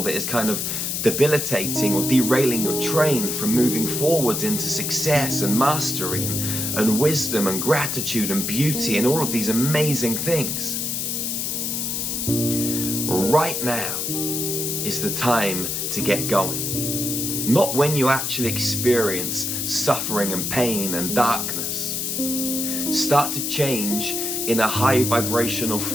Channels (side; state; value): left; noise; hiss, 1 dB below the sound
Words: that is kind of debilitating or derailing your train from moving forwards into success and mastery and wisdom and gratitude and beauty and all of these amazing things, right now is the time to get going. Not when you actually experience suffering and pain and darkness. Start to change in a high vibrational